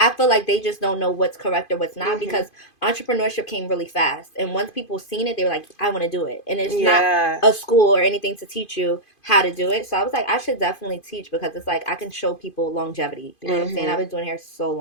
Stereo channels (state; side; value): late; right; 2.5 ms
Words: I feel like they just don't know what's correct or what's not, because entrepreneurship came really fast, and once people seen it, they were like, I want to do it. And it's not a school or anything to teach you how to do it. So I was like, I should definitely teach, because it's like I can show people longevity. You know what I'm saying? I've been doing hair so